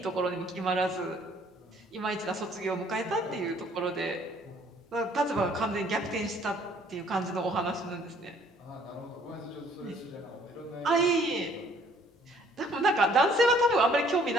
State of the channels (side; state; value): both; normal; correlation 0.60